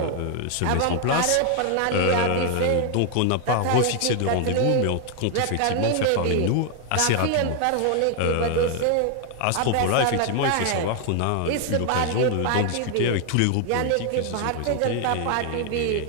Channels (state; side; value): different; both; correlation 0.00